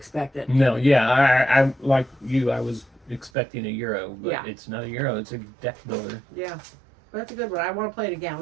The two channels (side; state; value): left; drops out; at 3.3 s